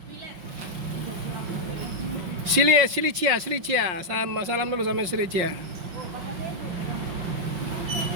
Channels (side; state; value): left; late; 5.6 ms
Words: Silicia. Salam dulu sama Silicia.